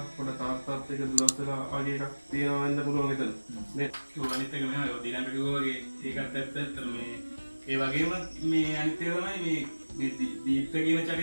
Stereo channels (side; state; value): both; inverted; correlation -1.00